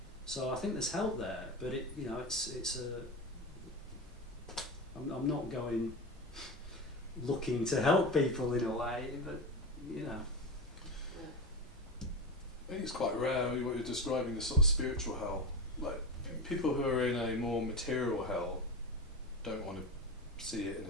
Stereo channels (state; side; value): normal; both; correlation 0.22